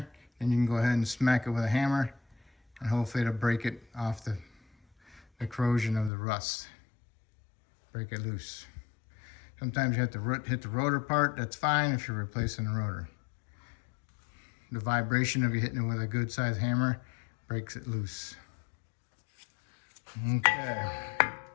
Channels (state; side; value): drops out; right; at 6.1 s